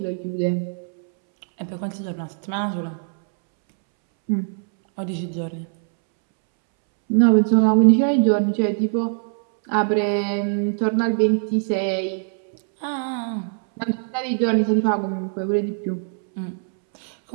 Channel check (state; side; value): silent; left; 64 dB below the other